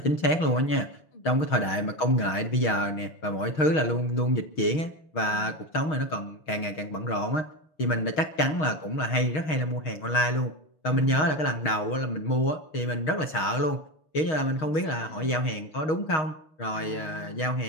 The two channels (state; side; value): late; right; 6.4 ms